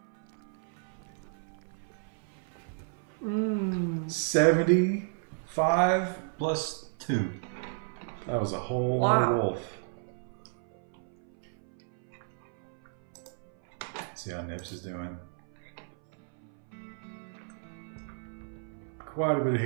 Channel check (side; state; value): left; silent; 56 dB below the other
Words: 75 plus 2. That was a whole lot of wolf. See how Nips is doing. Quite a bit of